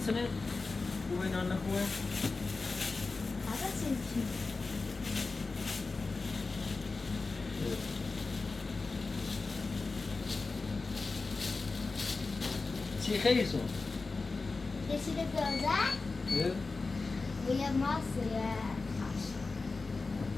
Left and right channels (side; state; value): right; quieter; 3.9 dB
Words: محسنه خوبه نه خوبه هذا سنتي چی خیلی سون يصير جوزاء ويا مصر يا خاش